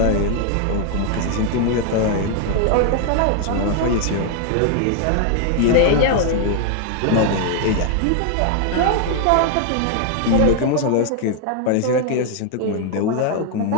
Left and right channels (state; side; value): different; both; correlation 0.00